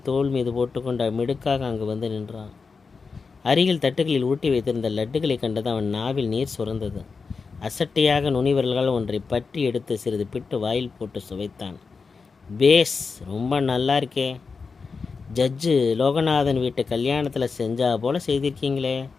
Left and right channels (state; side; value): quieter; right; 4.9 dB